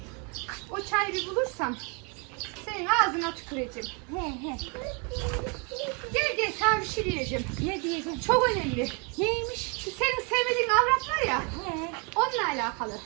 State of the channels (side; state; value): left; quieter; 33.6 dB